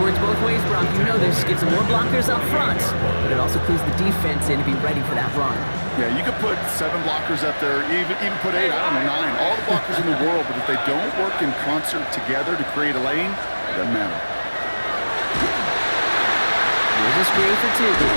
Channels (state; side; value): inverted; both; correlation -1.00